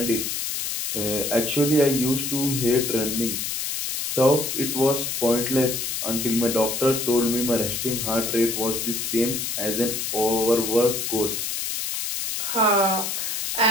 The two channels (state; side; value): noise; left; hiss, 2 dB below the sound